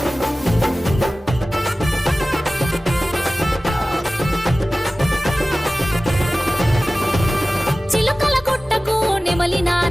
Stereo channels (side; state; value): both; normal; correlation 0.96